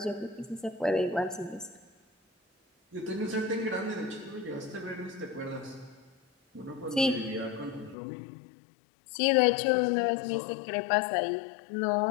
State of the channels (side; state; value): right; drops out; at 8.0 s